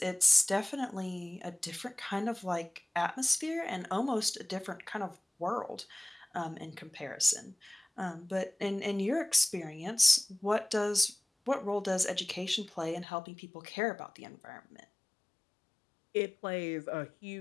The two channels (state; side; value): drops out; right; at 13.1 s